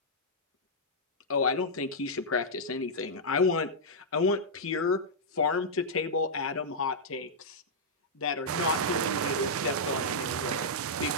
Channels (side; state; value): both; normal; correlation -0.09